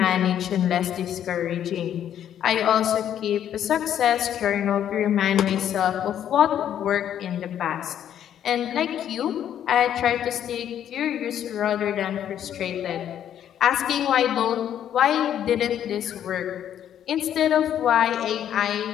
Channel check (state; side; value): quieter; right; 10.1 dB